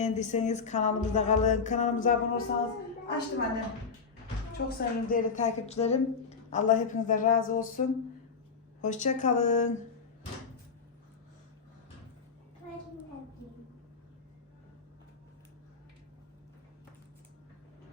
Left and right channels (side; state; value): right; quieter; 5.3 dB